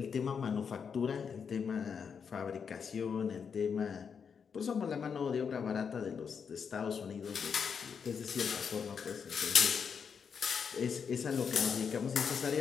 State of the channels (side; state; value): right; quieter; 6.5 dB